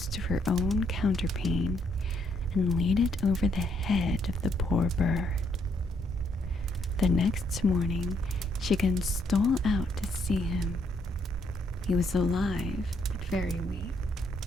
for her own counterpane and laid it over the head of the poor bird. The next morning, she again stole out to see him. He was alive, but very weak.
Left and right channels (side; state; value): both; normal; correlation 0.72